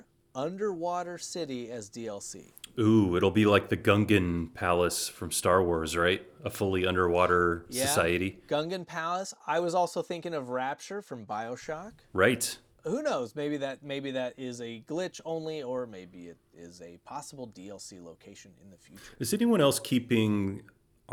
underwater city as DLC? Ooh, it'll be like the Gungan Palace from Star Wars, right? A fully underwater society. Gungan Palace. I was also thinking of Rapture from BioShock. Right. Who knows? Maybe that is a glitch only, or maybe it is a possible DLC location in the future. Is anyone else keeping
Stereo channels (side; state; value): both; identical; correlation 1.00